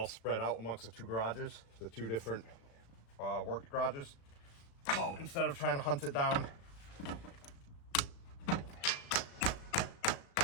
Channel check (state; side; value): late; right; 36 ms